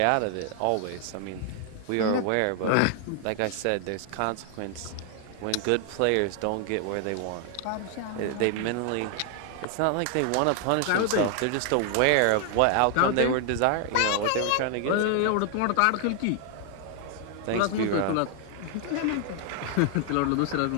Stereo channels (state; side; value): different; both; correlation 0.00